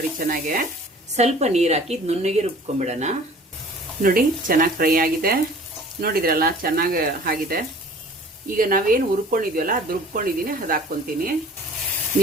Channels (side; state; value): both; normal; correlation 0.48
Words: ಚೆನ್ನಾಗೆ ಸ್ವಲ್ಪ ನೀರು ಹಾಕಿ ನುಣ್ಣಗೆ ರುಬ್ಕೊಂಡ್ಬಿಡೋಣ. ನೋಡಿ, ಚೆನ್ನಾಗಿ ಫ್ರೈ ಆಗಿದೆ. ನೋಡಿದ್ರಲ್ಲ, ಚೆನ್ನಾಗಿ ಆಗಿದೆ. ಈಗ ನಾವೇನು ಹುರ್ಕೊಂಡಿದ್ವಲ್ಲ ಅದು ರುಬ್ಕೊಂಡಿದ್ದೀನಿ, ಅದು ಹಾಕ್ಕೊಂತೀನಿ.